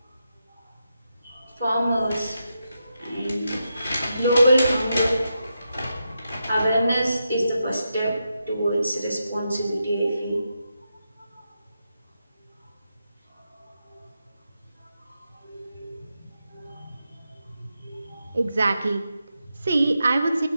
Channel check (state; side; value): inverted; both; correlation -0.86